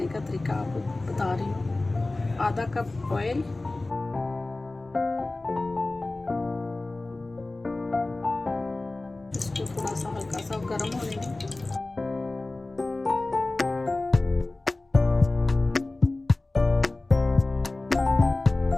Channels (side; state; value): right; quieter; 3.0 dB